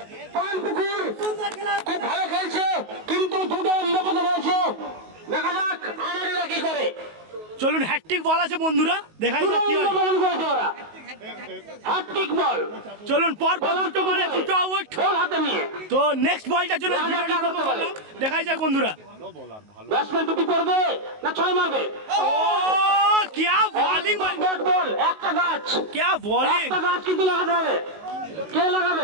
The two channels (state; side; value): late; left; 19 ms